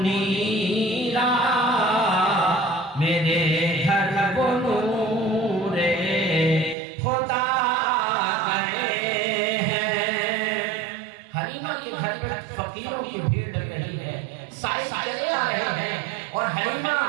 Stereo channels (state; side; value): drops out; left; at 6.8 s